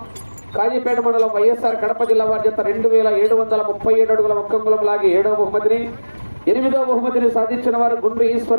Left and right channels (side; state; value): both; inverted; correlation -1.00